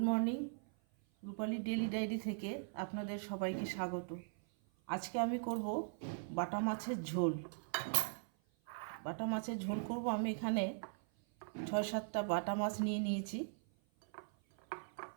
morning. রূপালী daily diary থেকে আপনাদের সবাইকে স্বাগত। আজকে আমি করব বাটা মাছের ঝোল। বাটা মাছের ঝোল করব। আমি এখানে 6-7টা বাটা মাছ নিয়ে নিয়েছি।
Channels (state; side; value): silent; left; 51 dB below the other